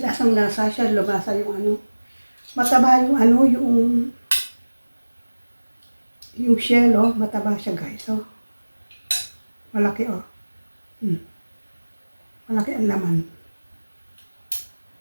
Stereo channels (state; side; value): inverted; both; correlation -1.00